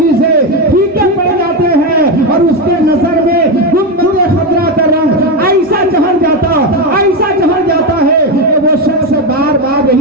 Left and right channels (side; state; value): both; normal; correlation 0.11